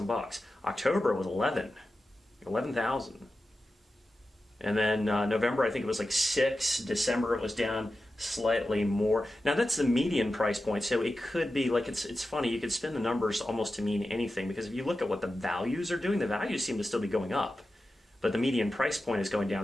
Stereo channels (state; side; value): normal; both; correlation 0.93